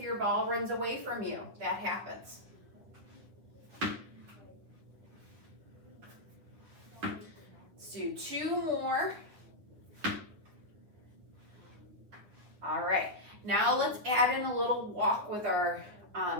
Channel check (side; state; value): left; late; 9.6 ms